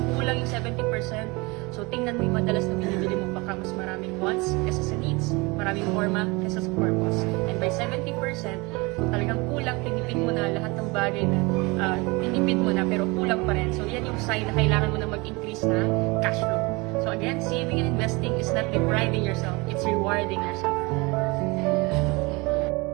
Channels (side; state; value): left; quieter; 25.8 dB